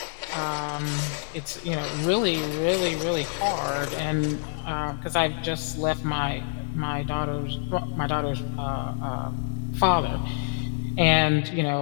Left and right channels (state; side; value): silent; right; digital silence